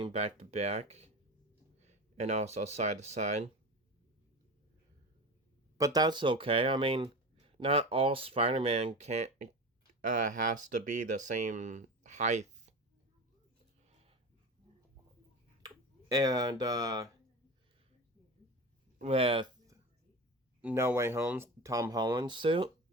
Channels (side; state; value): both; normal; correlation 0.28